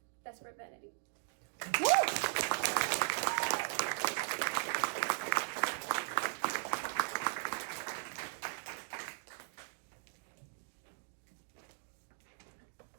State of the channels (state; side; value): silent; left; digital silence